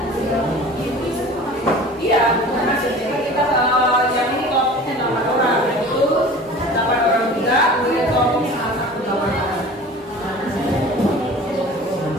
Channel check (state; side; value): normal; both; correlation 0.41